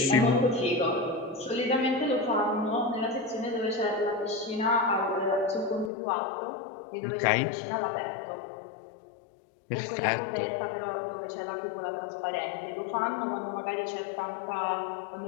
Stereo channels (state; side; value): drops out; right; at 5.9 s